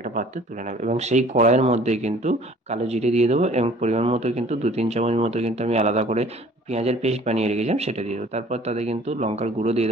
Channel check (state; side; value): normal; both; correlation 0.52